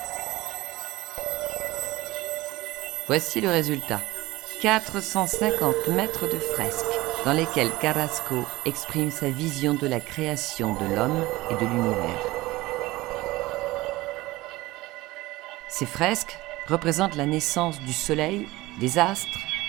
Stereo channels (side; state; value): left; quieter; 19.4 dB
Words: Voici le résultat. 450 mètres de fresques dans lesquelles Carrasco exprime sa vision de la création de l'homme et de l'univers. Ces fresques représentent la naissance du soleil, des astres,